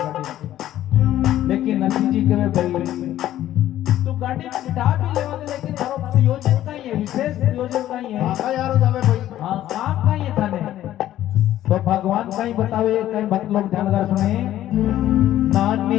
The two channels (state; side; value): quieter; right; 13.0 dB